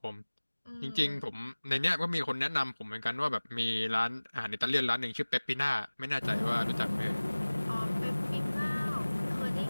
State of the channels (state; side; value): inverted; both; correlation -1.00